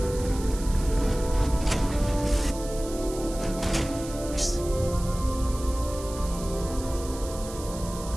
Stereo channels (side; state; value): right; noise; hiss, 14 dB below the sound